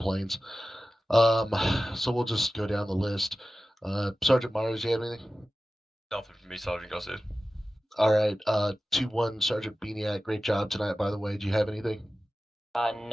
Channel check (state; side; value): normal; both; correlation 0.95